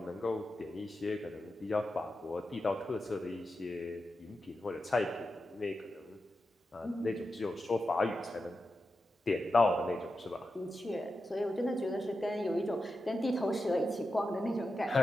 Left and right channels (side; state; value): both; normal; correlation 0.90